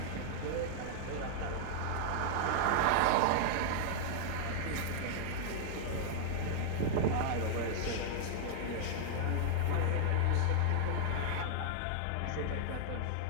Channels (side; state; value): both; different; correlation -0.01